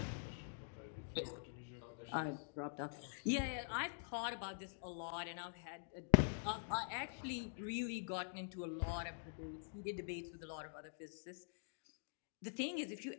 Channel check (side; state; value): right; silent; digital silence